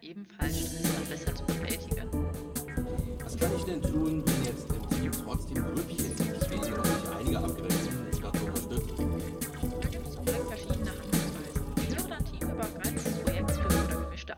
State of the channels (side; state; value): both; identical; correlation 1.00